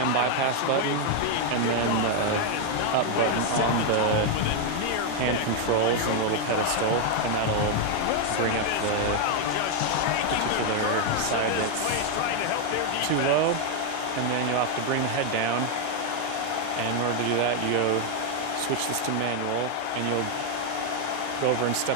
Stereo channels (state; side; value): different; both; correlation 0.01